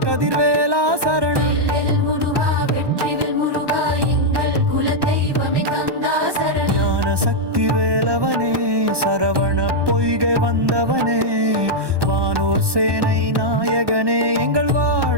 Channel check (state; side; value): late; left; 1.2 ms